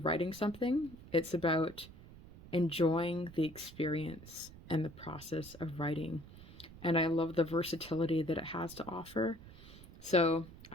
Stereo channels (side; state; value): right; noise; rumble, 18 dB below the sound